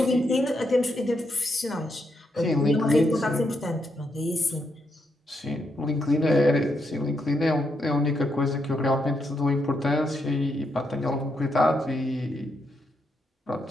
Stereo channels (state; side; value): normal; both; correlation 0.80